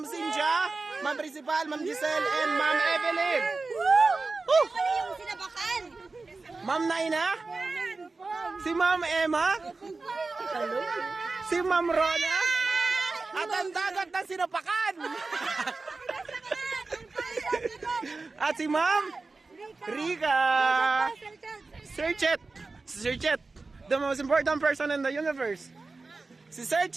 Cynthia, Ma'am Principal, Ma'am Giselle, and Ma'am Evelyn. Woo! Ma'am Naina, si Ma'am Emma, si Ma'am Rona, at ang dagat ng Sinapakan. At si Ma'am Rica. Sir Chet, the most important person in the universe. Si Sir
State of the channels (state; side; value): quieter; left; 3.8 dB